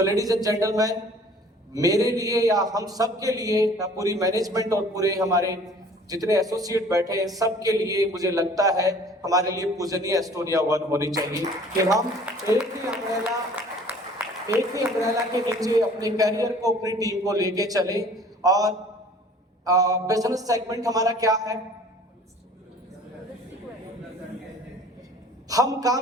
ladies and gentleman, मेरे लिए या हम सब के लिए, पूरी मैनेजमेंट और पूरे हमारे जितने एसोसिएट बैठे हैं सबके लिए मुझे लगता है हमारे लिए पूजनीय एस्टोनिया 1 होनी चाहिए कि हम एक ही अम्ब्रेला के नीचे अपने करियर को, अपनी टीम को लेके चले। और बिजनेस सेगमेंट हमारा क्या है? हम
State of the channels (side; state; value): both; normal; correlation 0.50